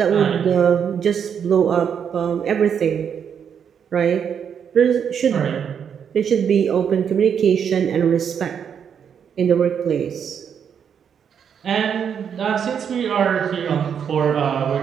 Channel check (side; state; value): left; quieter; 7.7 dB